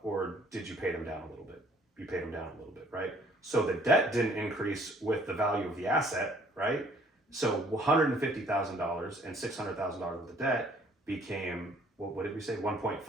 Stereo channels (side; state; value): both; normal; correlation 0.59